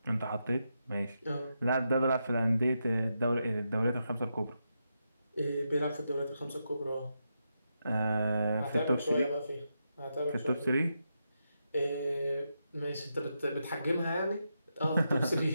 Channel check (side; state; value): both; inverted; correlation -0.85